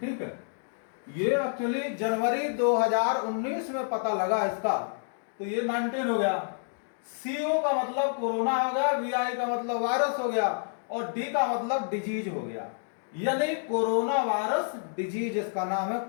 है, ये एक्चुअली जनवरी 2019 में पता लगा इसका, तो ये 19 हो गया। CO का मतलब कोरोना हो गया, VI का मतलब वायरस हो गया और D का मतलब डिजीज हो गया, यानी कोरोना वायरस डिजीज, इसका नाम है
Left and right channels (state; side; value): silent; right; digital silence